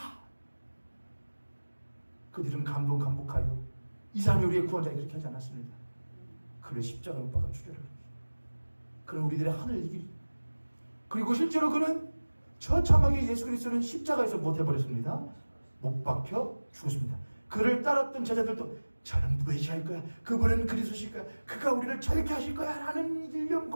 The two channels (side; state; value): both; inverted; correlation -1.00